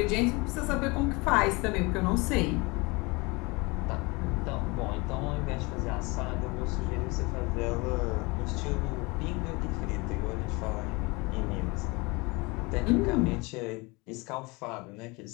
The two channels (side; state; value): right; quieter; 26.0 dB